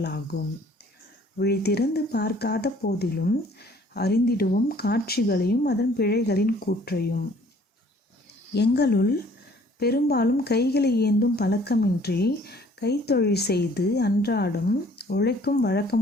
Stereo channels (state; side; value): normal; both; correlation 0.57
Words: விழித்திறந்து பார்க்காத போதிலும் அறிந்திடுவோம் காட்சிகளையும் அதன் பிழைகளின் கூற்றையும். எங்களுள் பெரும்பாலும் கைகளை ஏந்தும் பழக்கமின்றி கைத்தொழில் செய்து அன்றாடம் உழைக்கும் வழக்கம்